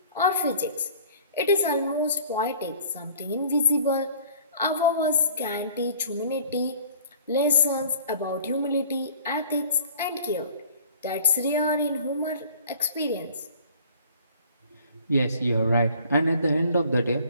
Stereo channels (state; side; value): inverted; both; correlation -0.51